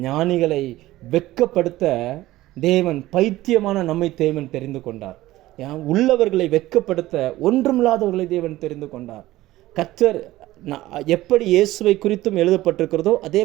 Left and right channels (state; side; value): quieter; left; 16.5 dB